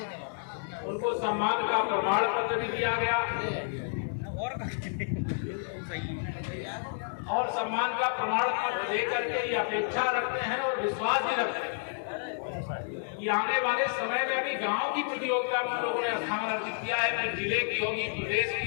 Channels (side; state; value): right; silent; digital silence